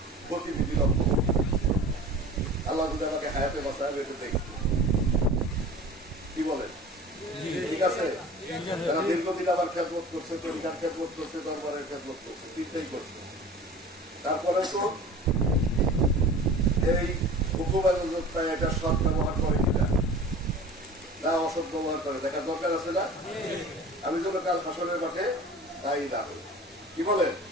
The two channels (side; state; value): both; normal; correlation 0.40